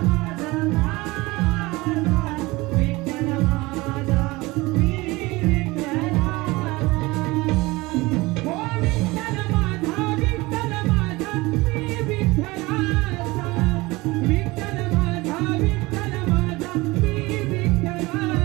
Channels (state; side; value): quieter; left; 21.9 dB